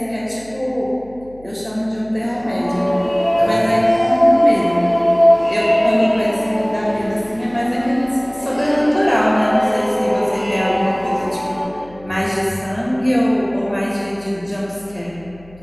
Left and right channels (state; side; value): noise; left; hum, 24 dB below the sound